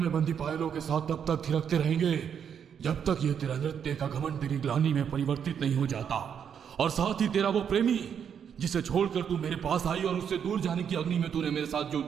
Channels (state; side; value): quieter; left; 7.9 dB